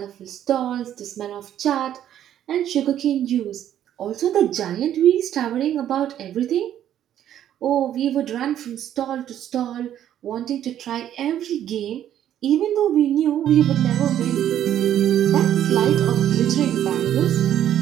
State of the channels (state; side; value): quieter; left; 10.9 dB